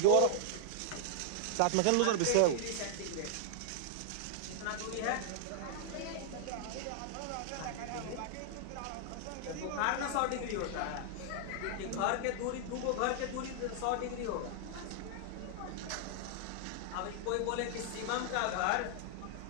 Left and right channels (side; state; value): both; different; correlation -0.01